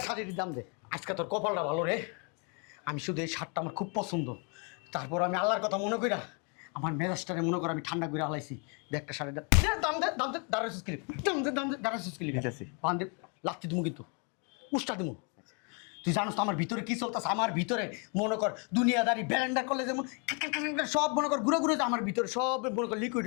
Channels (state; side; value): quieter; right; 36.6 dB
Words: শাড়ির দাম দে। আজকে তোর কপালটা ভালো রে, আমি শুধু এই শার্টটা আমার খুব পছন্দ। তারপর আমি আল্লাহর কথা মনে কইরা আমার মেজাজটারে মনে করে আমি ঠান্ডা করে হালাইছি। দে একটা শাড়ির দাম দাম দে দাঁড়াইছিস ক্লিপ দাম দে দাঁড়াইছিস ক্লিপ দিতেছি। বান্ধে লাত্তি দিমু কিন্তু উষ্টা দিমু। তুই জানোস তো আমার ভিতরে কি চলতেছে? আমার ভিতরে মনে কর দুনিয়াদারি ব্যালেন্ডার করলে যেমন সব মনে কর ঘুরে ঘুরে আমার ভিতরে সব মনে কর লিকুইড